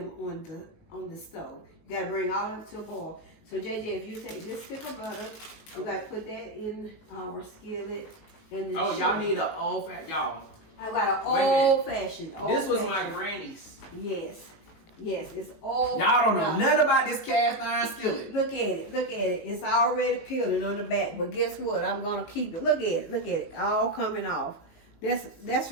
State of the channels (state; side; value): late; right; 19 ms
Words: on the stove. You gotta bring all of it to a boil. So JJ, if you take this stick of butter, we gotta put that in our skillet. And y'all need an old-fashioned, y'all. I got an old-fashioned. This was my granny's. Yes, it's old. Y'all don't know nothing about this cast iron skillet. Look at it. It's already peeling on the back, but guess what? I'm gonna keep it. Look at it, all coming off. That's